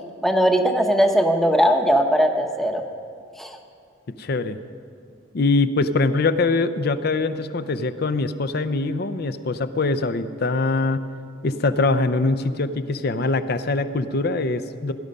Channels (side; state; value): both; normal; correlation 0.53